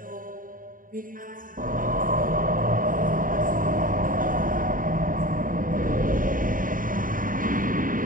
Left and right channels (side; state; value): left; late; 0.40 ms